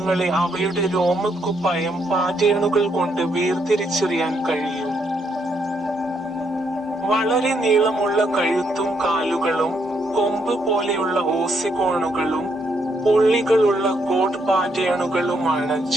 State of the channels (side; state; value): both; normal; correlation 0.75